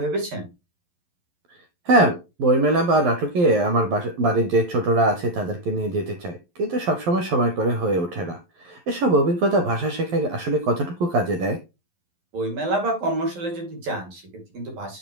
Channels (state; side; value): late; left; 11 ms